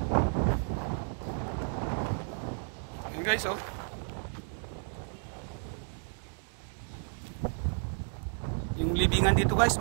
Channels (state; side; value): silent; left; 56 dB below the other